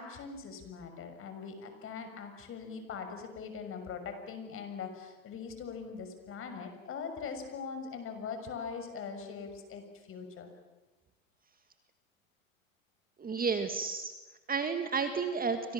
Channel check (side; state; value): both; normal; correlation 0.13